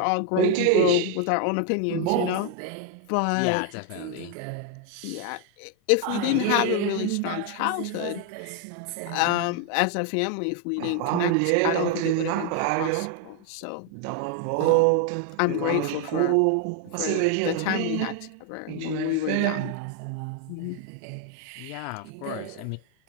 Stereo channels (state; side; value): different; both; correlation 0.01